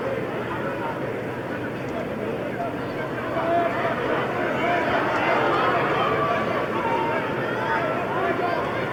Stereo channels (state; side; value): identical; both; correlation 1.00